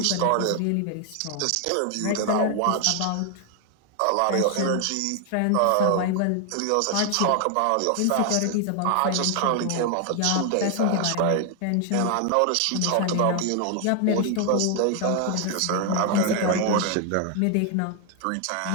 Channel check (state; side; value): different; both; correlation 0.00